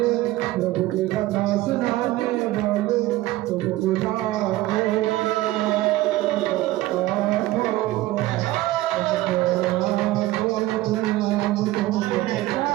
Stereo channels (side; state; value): left; quieter; 16.9 dB